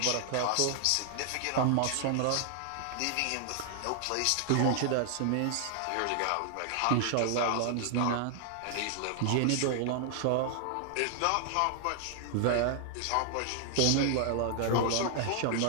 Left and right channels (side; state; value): both; different; correlation 0.00